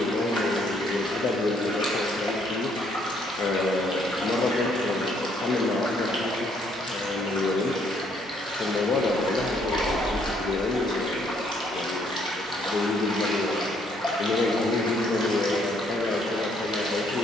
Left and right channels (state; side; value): normal; both; correlation 0.68